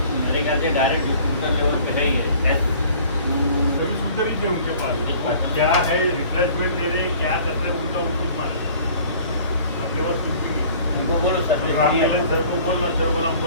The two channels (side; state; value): both; inverted; correlation -0.50